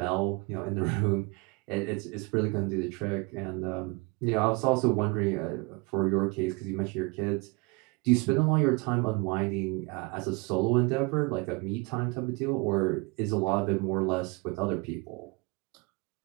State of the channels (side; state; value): left; quieter; 27.9 dB